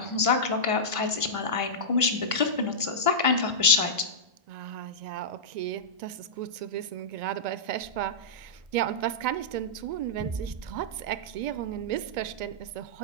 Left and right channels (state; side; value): late; left; 1.9 ms